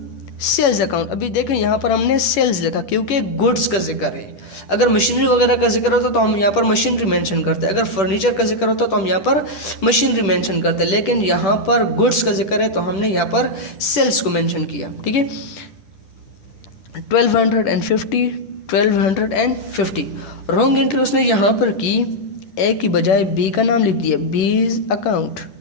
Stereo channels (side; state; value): right; late; 10 ms